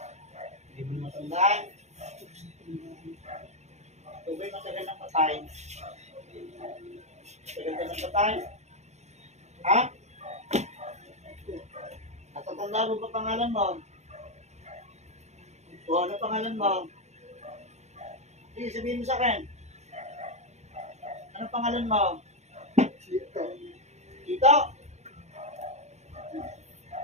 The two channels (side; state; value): left; late; 0.33 ms